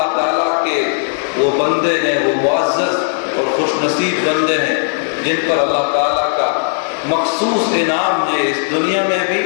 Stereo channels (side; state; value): right; silent; digital silence